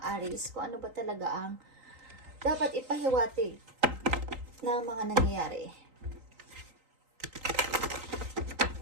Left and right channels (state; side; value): late; left; 3.8 ms